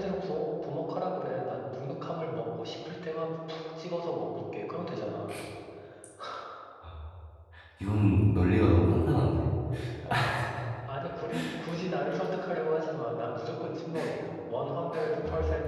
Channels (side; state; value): both; identical; correlation 1.00